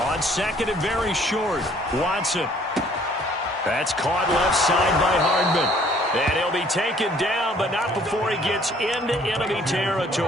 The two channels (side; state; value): both; normal; correlation 0.58